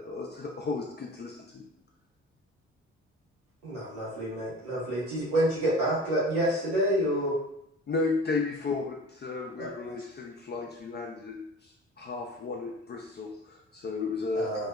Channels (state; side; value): normal; both; correlation 0.39